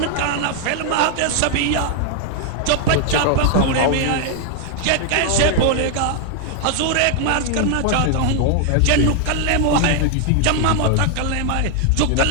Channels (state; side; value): different; both; correlation 0.00